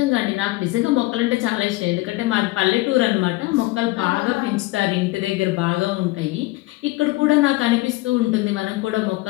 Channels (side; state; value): right; quieter; 20.1 dB